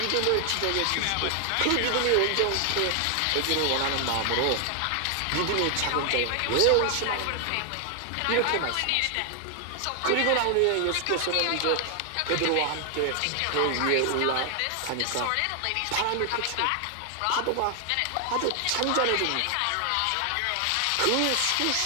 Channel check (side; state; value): both; different; correlation 0.00